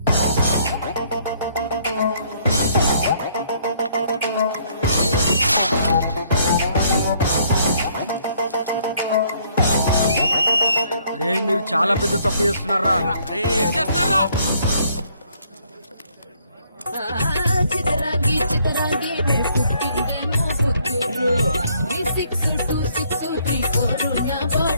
రే మీరు చాలా పెద్ద తప్పు చేస్తున్నారా. ఏం చేస్తున్నారా? చితరాంగి చితరాంగి పుట్టిందేమో పుత్తూరు. 362634 నా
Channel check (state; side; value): inverted; both; correlation -0.66